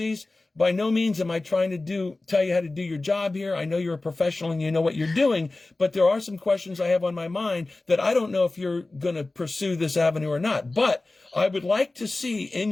by no means am I trying to tell you how to do your job here. I know you're a professional and you know what you're doing, but there are some questions I have on my mind that I don't know if you're going to pursue this avenue or not. But I would like to see in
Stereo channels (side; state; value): right; quieter; 3.1 dB